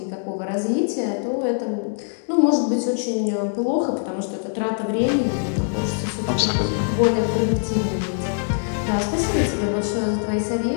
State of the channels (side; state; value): right; silent; digital silence